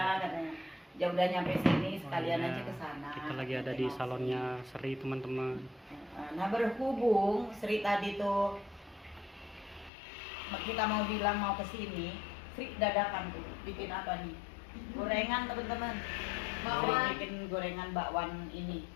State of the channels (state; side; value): drops out; right; at 9.9 s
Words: katanya. Ya udah nyampe sini sekalian Oh, iya. aja ke sana. Kita lagi ada di salonnya Sri teman-teman. Nah berhubung Sri tadi tuh kita mau bilang mau ke sini, Sri dadakan tuh bikin apa nih? Gorengan teman-teman. Sri bikin gorengan bakwan ini.